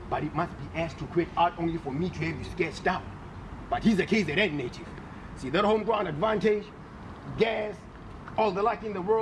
but it must be asked to quit art only for me to have you sketched out. But he's a KZN native. See that home ground advantage, gas, all the luck in the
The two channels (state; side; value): identical; both; correlation 1.00